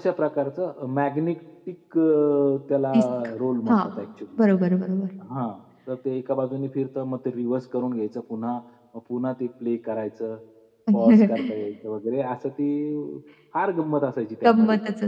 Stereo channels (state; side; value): identical; both; correlation 1.00